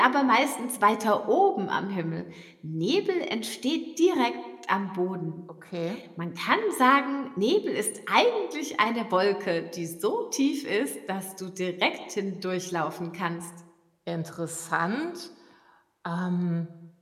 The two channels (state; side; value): identical; both; correlation 1.00